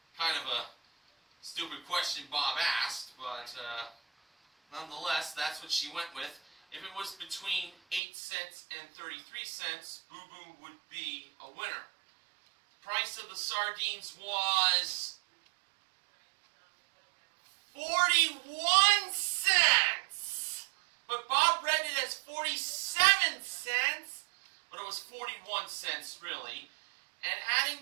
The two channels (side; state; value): left; drops out; at 8.0 s